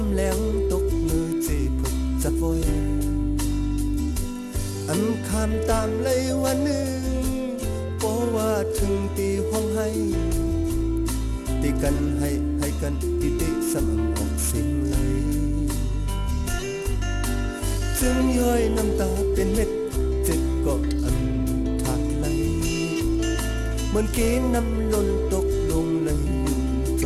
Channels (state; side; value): identical; both; correlation 1.00